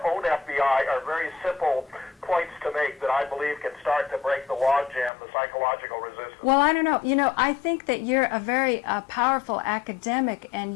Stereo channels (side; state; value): right; drops out; at 5.1 s